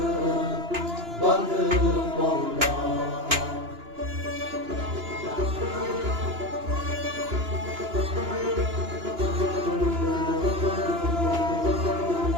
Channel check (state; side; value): late; left; 2.9 ms